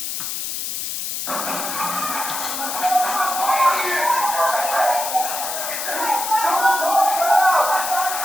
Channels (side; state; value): left; noise; hiss, 4 dB below the sound